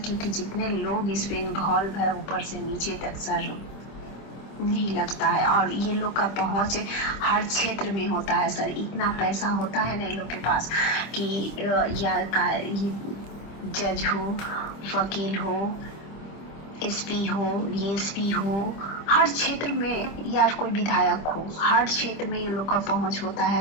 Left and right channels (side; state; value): right; late; 25 ms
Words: क्योंकि जितने लोग इस पे इन्वॉल्व है ऊपर से नीचे तक सर, नहीं लगता है। और ये लोग का पहुंच हर क्षेत्र में होता है सर, इतना पैसा होता है ना इन लोग के पास कि ये जज हो, वकील हो, एसपी हो, डीएसपी हो, हर क्षेत्र में, या कोई विधायक हो, हर क्षेत्र में ये लोग का पहुंच होता